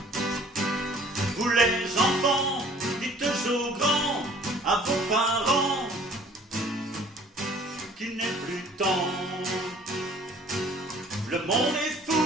Vous les enfants, dites aux grands, à vos parents, qu'il n'est plus temps. Le monde est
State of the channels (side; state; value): both; normal; correlation 0.54